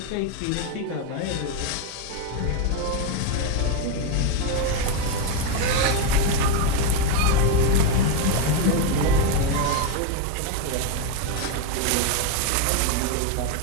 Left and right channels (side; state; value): both; different; correlation 0.02